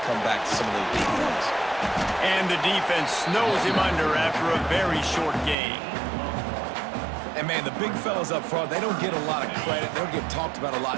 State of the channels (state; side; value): drops out; left; at 5.6 s